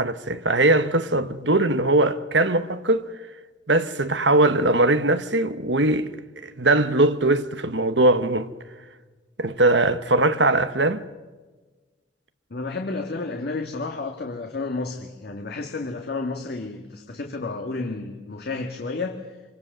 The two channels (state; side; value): normal; both; correlation 0.00